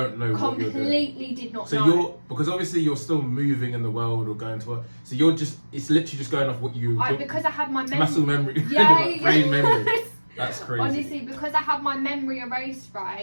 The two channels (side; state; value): both; inverted; correlation -1.00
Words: know what you're doing. Completely did not know. So because obviously you're still moving in the world or going to work. So it's literally just going off what you. Because I had my muscle memory. Yeah, brain memory. That's crazy. Honestly, because I had my memory erased,